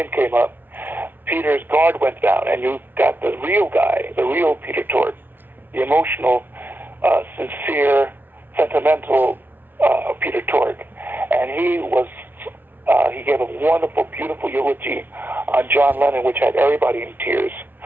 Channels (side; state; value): left; late; 0.093 ms